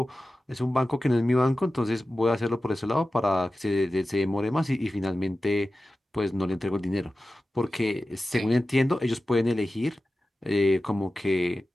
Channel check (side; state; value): both; normal; correlation 0.94